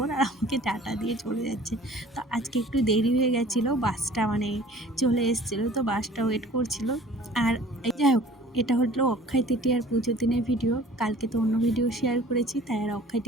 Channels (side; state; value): both; normal; correlation 0.49